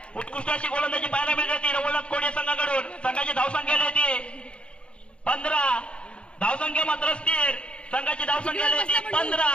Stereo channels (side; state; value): right; late; 0.056 ms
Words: उत्कृष्ट अशी गोलंदाजी पाहायला मिळते रवळनाथ कोडे संघाकडून. संघाची धावसंख्या येते 15. धावसंख्या मात्र स्थिर. संघाची धावसंख्या येते 15.